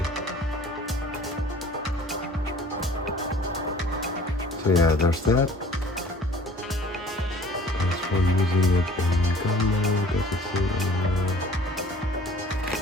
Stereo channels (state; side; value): normal; both; correlation 0.50